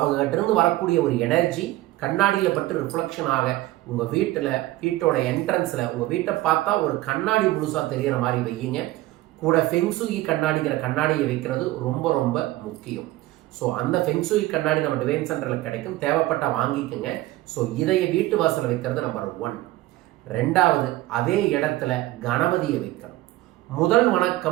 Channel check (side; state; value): left; quieter; 17.3 dB